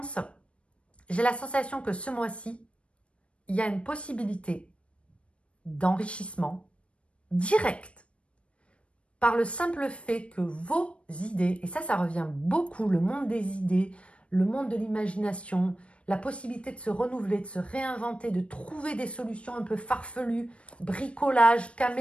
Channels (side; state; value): right; late; 0.060 ms